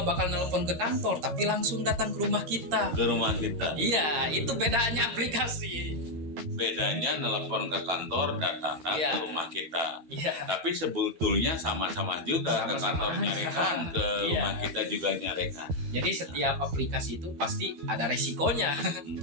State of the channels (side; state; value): left; late; 13 ms